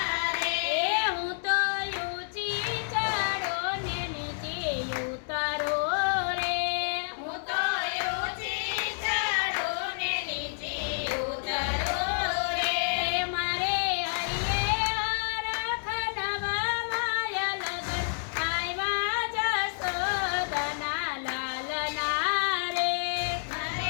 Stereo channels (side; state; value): right; silent; 58 dB below the other